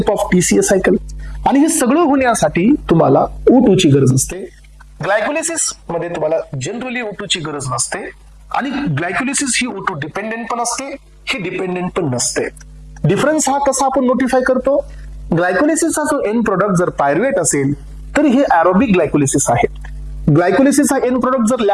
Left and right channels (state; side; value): identical; both; correlation 1.00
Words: of TCA cycle. आणि हे सगळं होण्यासाठी तुम्हाला O2 ची गरज असते. ग्लायकोलिसिस मध्ये तुम्हाला जनरली O2 ची गरज नसते आणि ग्लायकोलिसिस ही O2 डिपेंडेंट पण असते, ही डिपेंडेंट पण नसते. डिफरन्स हा कसा आपण नोटिफाय करतो? ग्लायकोलिसिसचा जो एंड प्रोडक्ट जर पायरुवेट असेल तर हे ॲरोबिक ग्लायकोलिसिस आहे. ग्लायकोलिसिसचा एंड प्रोडक्ट जर